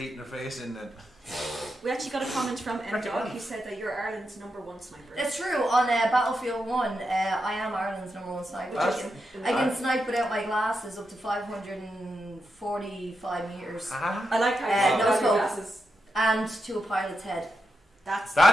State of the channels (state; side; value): normal; both; correlation 0.86